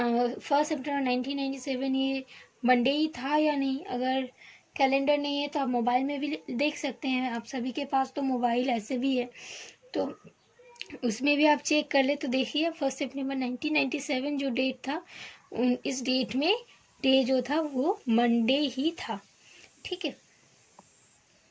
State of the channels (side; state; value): both; identical; correlation 1.00